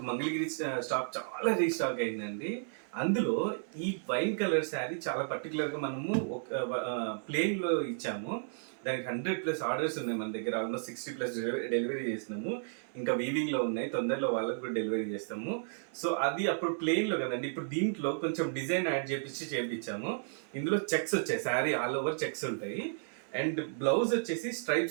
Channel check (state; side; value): silent; left; 56 dB below the other